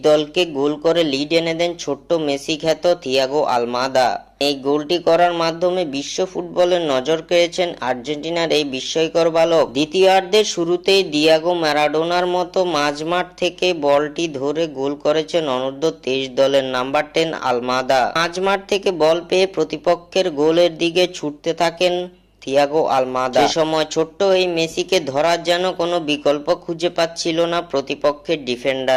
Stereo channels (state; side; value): identical; both; correlation 1.00